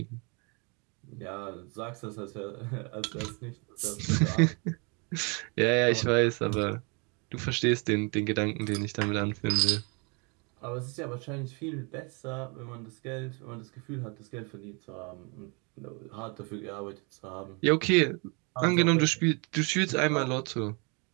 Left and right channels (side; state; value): left; quieter; 32.5 dB